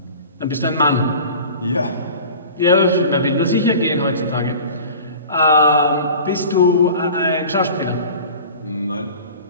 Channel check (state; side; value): inverted; both; correlation -0.40